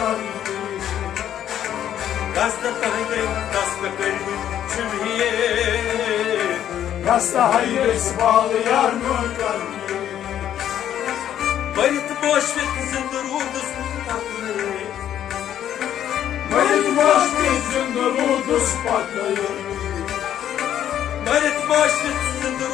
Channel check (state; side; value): quieter; right; 10.7 dB